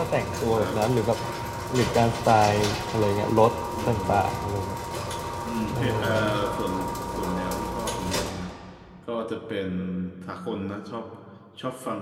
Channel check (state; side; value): identical; both; correlation 1.00